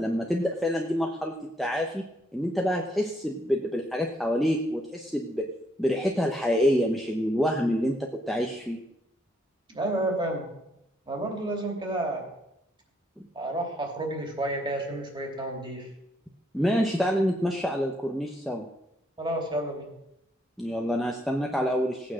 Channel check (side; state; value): both; normal; correlation 0.72